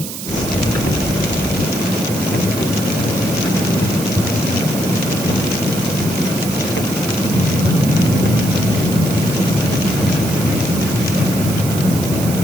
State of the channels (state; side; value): noise; right; hiss, 8 dB below the sound